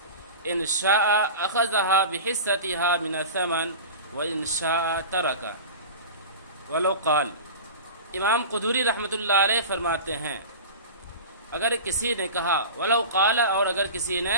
إن شاء أخذها بحصتها من الثمن وإن شاء ترك. ولو قال، امام قدوری رحمۃ اللہ علیہ فرماتے ہیں اگر کسی نے کہا، ولو قال، اور اگر کسی نے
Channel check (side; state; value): both; inverted; correlation -0.31